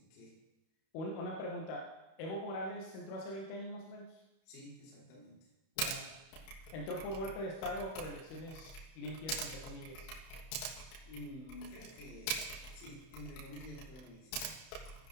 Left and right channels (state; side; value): late; right; 31 ms